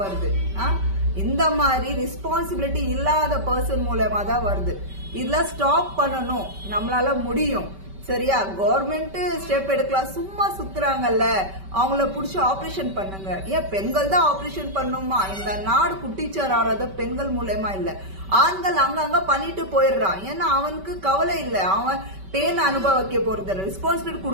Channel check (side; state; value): left; late; 5.2 ms